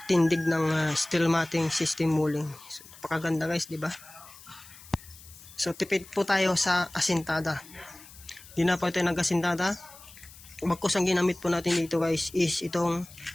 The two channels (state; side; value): noise; left; hiss, 20 dB below the sound